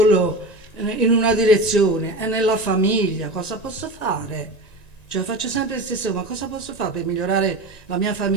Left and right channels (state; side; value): late; right; 1.9 ms